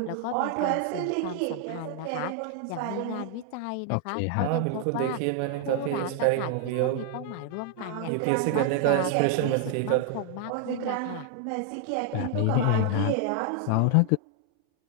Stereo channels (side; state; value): both; different; correlation 0.00